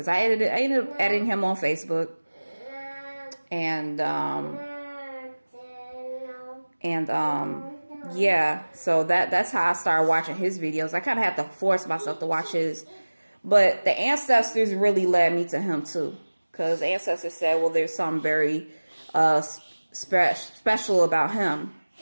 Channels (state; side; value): inverted; both; correlation -1.00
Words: I ended up adding him on Facebook, yeah, so that's how I started watching his videos. I kind of had to force myself to watch his. But the ancestors really led me to him too. Because the ancestors said, well, there's something very special about him.